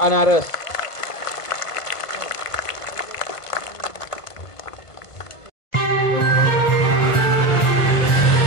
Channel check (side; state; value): right; late; 1.5 ms